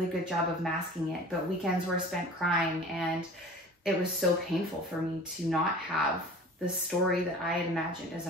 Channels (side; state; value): both; normal; correlation 0.42